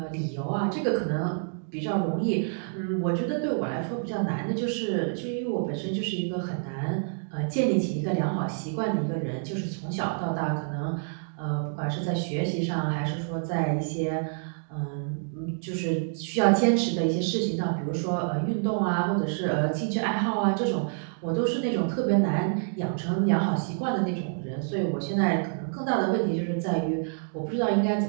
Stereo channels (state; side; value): silent; left; digital silence